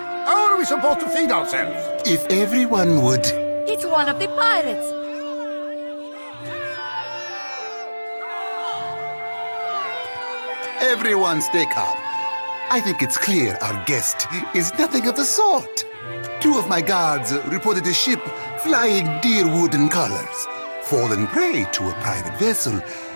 How are we supposed to feed ourselves? If everyone would... It's one of the pirates. Everyone stay calm. I think it's clear our guest is nothing of the sort. 2 of my guards reported a ship flying deer wooden colors, fallen prey to a private vessel.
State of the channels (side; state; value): both; inverted; correlation -1.00